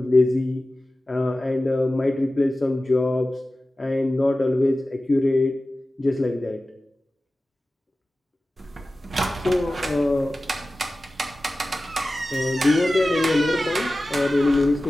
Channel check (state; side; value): normal; both; correlation 0.96